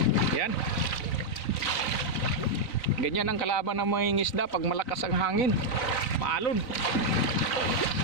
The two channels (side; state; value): right; late; 3.9 ms